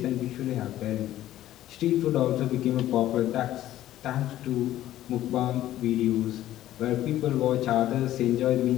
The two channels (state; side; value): quieter; right; 13.6 dB